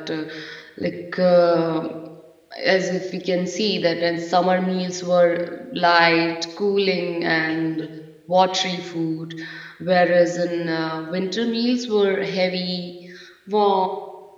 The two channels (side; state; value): both; identical; correlation 1.00